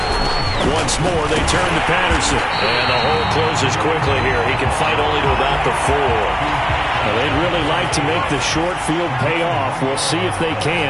Once more, they turn to Patterson. And the hole closes quickly here. He can fight only to about the 4. Well, they'd really like to make the short field pay off. We'll see if they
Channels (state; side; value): identical; both; correlation 1.00